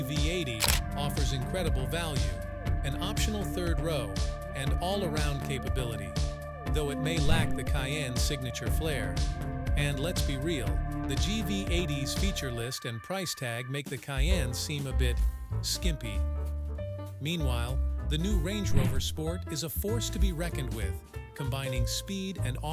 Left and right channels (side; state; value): both; identical; correlation 1.00